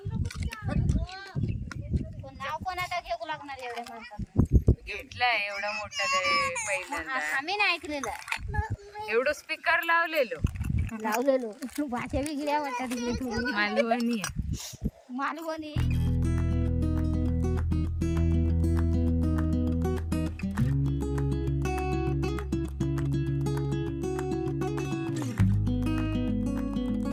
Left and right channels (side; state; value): both; identical; correlation 1.00